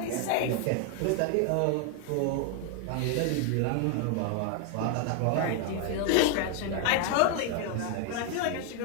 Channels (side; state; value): both; different; correlation 0.00